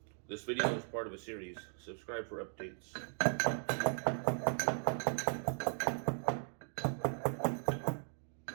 This video is part of a series. Subscribe for updates.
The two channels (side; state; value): left; silent; 52 dB below the other